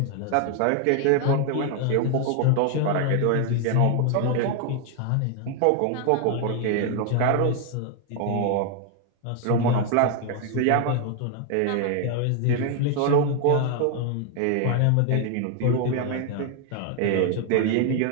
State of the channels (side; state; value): both; different; correlation 0.01